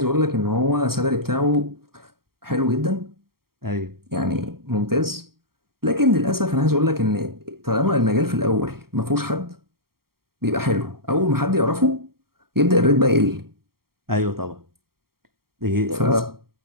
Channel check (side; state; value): left; late; 0.94 ms